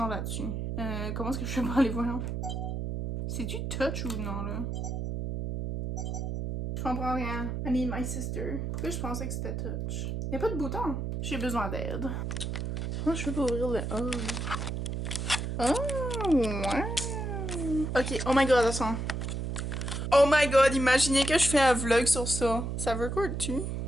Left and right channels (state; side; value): noise; right; hum, 3 dB below the sound